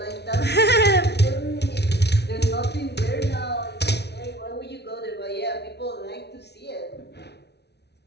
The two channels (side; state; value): right; late; 0.49 ms